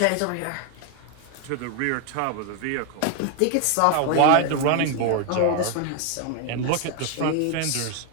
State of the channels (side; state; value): both; different; correlation 0.00